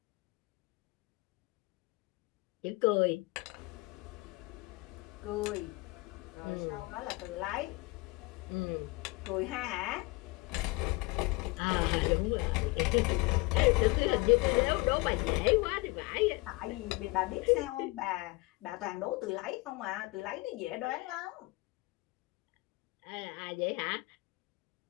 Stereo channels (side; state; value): right; quieter; 23.9 dB